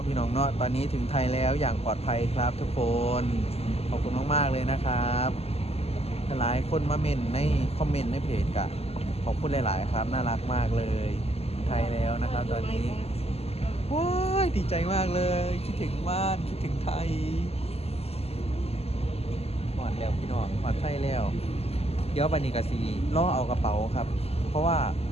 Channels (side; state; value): right; late; 0.29 ms